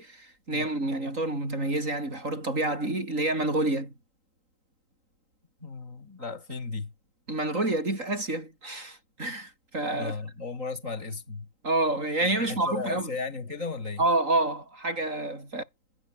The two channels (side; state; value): left; late; 3.8 ms